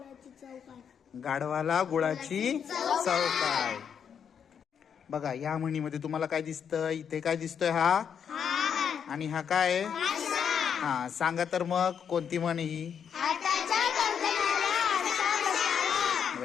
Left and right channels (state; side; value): quieter; right; 7.6 dB